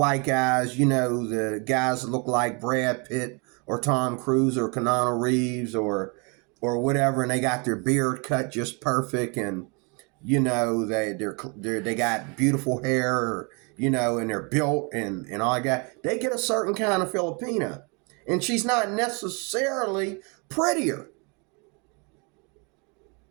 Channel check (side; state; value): left; quieter; 32.6 dB